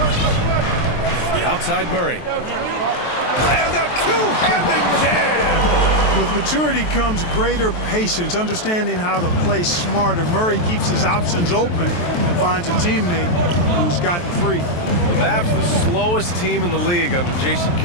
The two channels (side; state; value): right; late; 23 ms